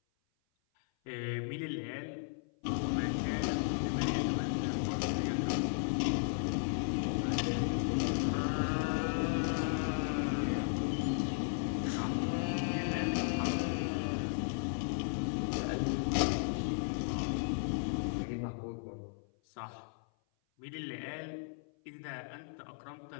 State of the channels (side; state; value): right; silent; 54 dB below the other